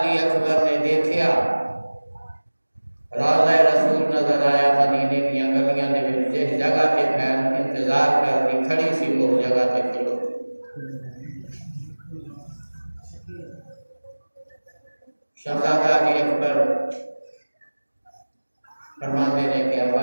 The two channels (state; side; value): inverted; both; correlation -1.00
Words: अकबर ने देखा रौज़ा रसूल नजर आया। मदीने की गलियां ने जिस जगह पे फैल इंतजार कर दी खड़ी सी वो जगह पे खड़ो। शहजादा अली अकबर फरमाते ने कि अब्बा